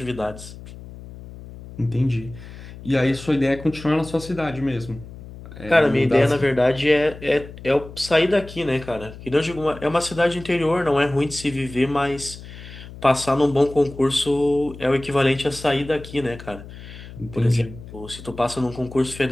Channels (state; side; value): noise; left; hum, 15 dB below the sound